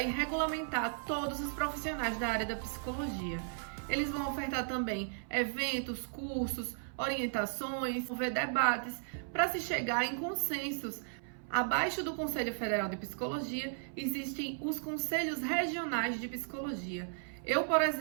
e regulamentar todos os profissionais da área da psicologia. Eles vão ofertar também eventos, cursos, orientações, promover debates para se chegar em consensos. Abaixo do Conselho Federal de Psicologia existem os Conselhos Regionais de Psicologia. Eu, por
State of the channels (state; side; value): silent; left; 54 dB below the other